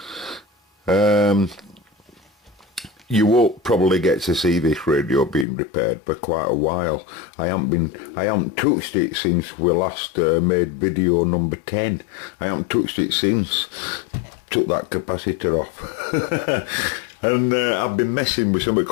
You won't probably get to see this radio being repaired for quite a while. I haven't touched it since we last made video number 10. I haven't touched it since. Took that capacitor off. And I've been messing with something.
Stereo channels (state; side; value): drops out; right; at 5.5 s